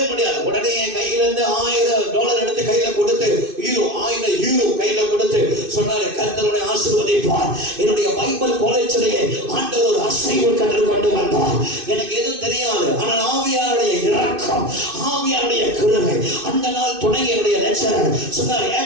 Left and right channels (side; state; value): left; late; 2.5 ms